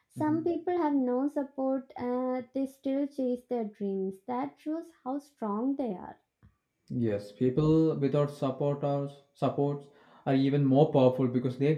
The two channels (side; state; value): both; identical; correlation 1.00